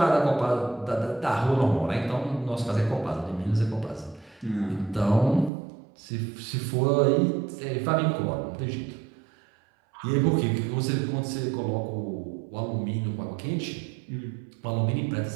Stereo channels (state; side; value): drops out; left; at 5.5 s